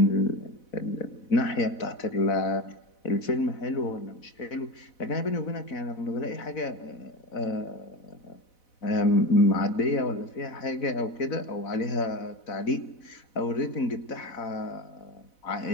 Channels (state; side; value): late; right; 4.1 ms